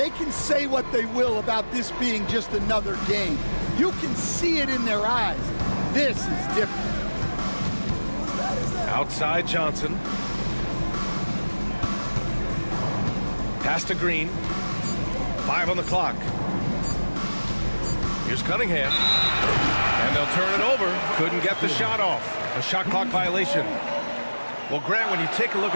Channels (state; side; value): inverted; both; correlation -1.00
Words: can say what they will about this being just another game. You can see it in their eyes. This is different. Outside Johnson. Pass to Green. 5 on the clock. Here's Cunningham. And they'll turn it over. Couldn't get the shot off. A shot clock violation. Well, Grant, when you take a look